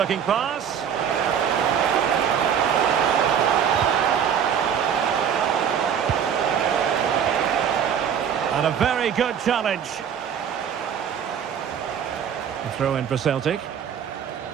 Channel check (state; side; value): quieter; left; 8.2 dB